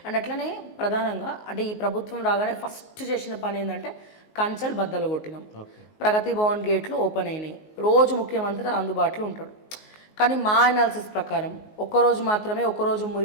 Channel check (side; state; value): right; late; 19 ms